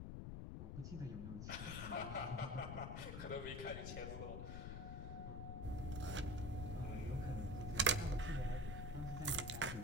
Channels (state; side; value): noise; left; rumble, 4 dB below the sound